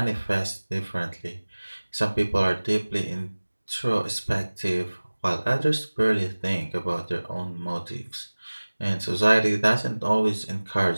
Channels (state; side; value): inverted; both; correlation -1.00